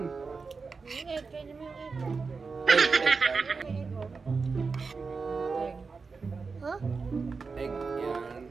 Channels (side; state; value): left; quieter; 4.7 dB